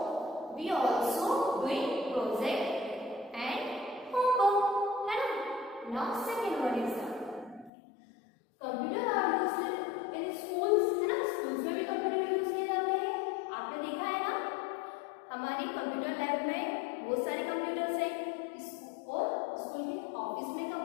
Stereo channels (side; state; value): right; drops out; at 7.7 s